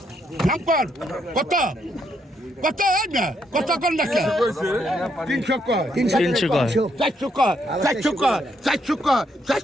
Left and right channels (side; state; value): both; normal; correlation 0.75